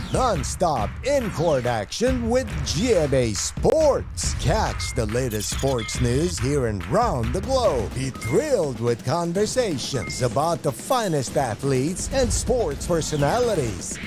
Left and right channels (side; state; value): both; identical; correlation 1.00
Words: non-stop in-court action with GMA Sports. Catch the latest sports news here and round the globe. Be thrilled with conversations about the finest athletes and sports personalities.